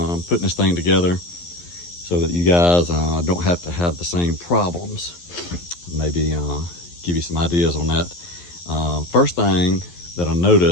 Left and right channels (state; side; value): late; right; 11 ms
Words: putting this thing together, so that you guys don't have to have the same problems. Maybe give you some ideas on that. First thing that I